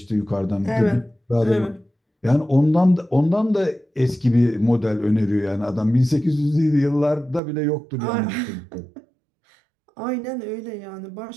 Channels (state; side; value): drops out; left; at 7.4 s